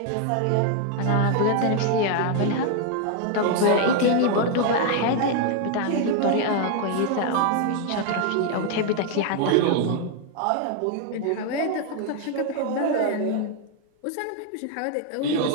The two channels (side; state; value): both; different; correlation 0.01